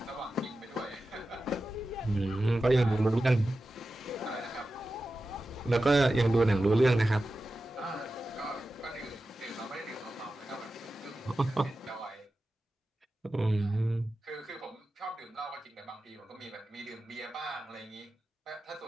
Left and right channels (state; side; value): normal; both; correlation 0.93